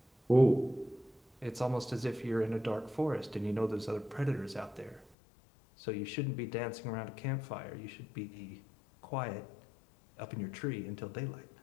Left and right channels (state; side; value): drops out; right; at 5.1 s